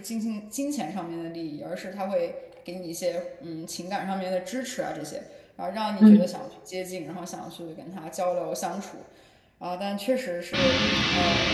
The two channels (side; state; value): both; identical; correlation 1.00